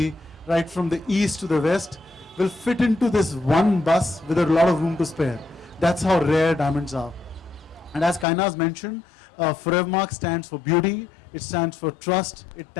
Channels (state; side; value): drops out; right; at 8.2 s